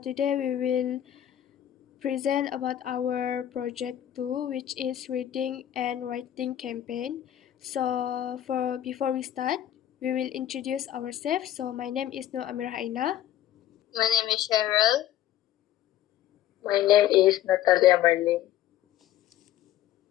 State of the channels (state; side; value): quieter; right; 12.0 dB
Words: we will present about our project 2, which is reading and writing campaign. So for before we start, we will introduce ourselves. So my name is Nur Amir Aina. My name is Cheryl. My name is Natalia Marlene.